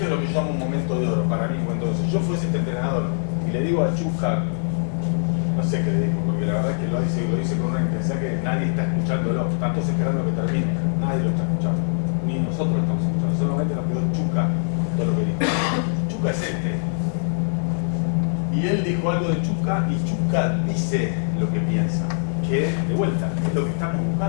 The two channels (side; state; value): right; silent; 56 dB below the other